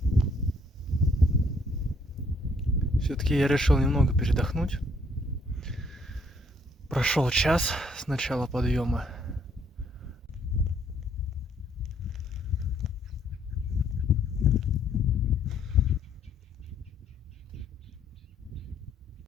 Все-таки я решил немного передохнуть. Прошел час с начала подъема.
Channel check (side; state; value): both; normal; correlation 0.67